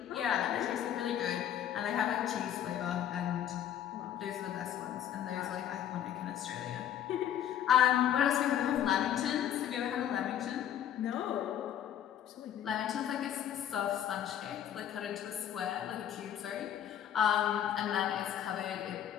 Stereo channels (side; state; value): right; quieter; 10.3 dB